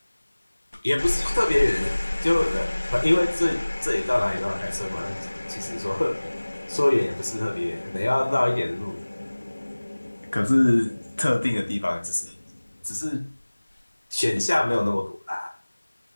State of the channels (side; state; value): both; inverted; correlation -1.00